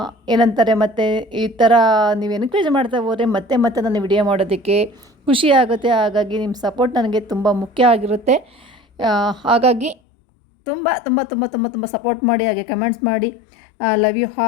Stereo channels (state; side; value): drops out; right; at 10.0 s